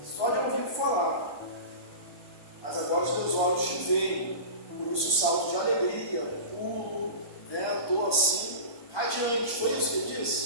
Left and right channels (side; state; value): right; late; 1.4 ms